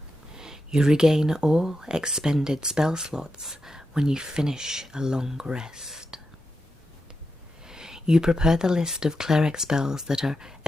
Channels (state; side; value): normal; both; correlation 0.87